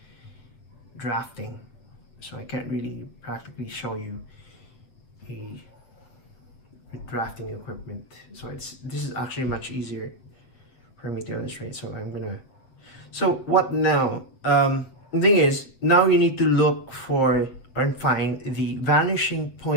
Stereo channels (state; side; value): late; right; 8.0 ms